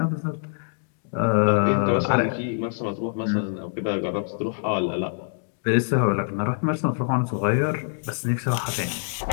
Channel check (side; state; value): right; silent; digital silence